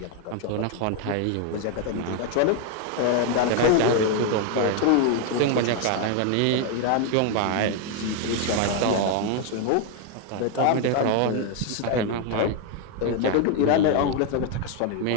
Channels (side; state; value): both; different; correlation 0.01